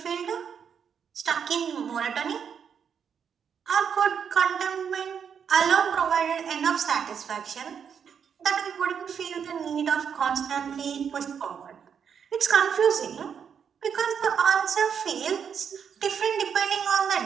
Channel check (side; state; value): left; quieter; 7.4 dB